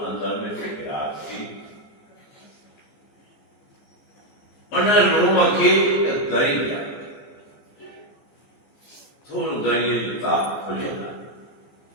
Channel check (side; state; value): right; late; 14 ms